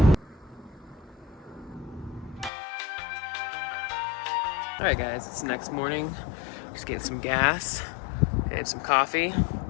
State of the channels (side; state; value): right; drops out; at 2.5 s